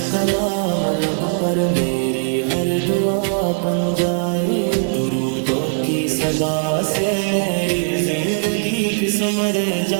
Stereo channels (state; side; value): silent; left; digital silence